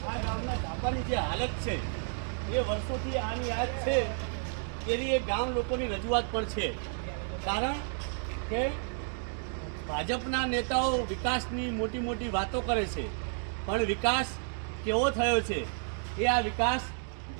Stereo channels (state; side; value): silent; left; 57 dB below the other